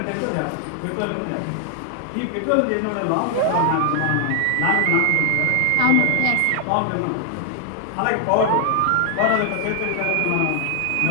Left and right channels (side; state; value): both; different; correlation 0.00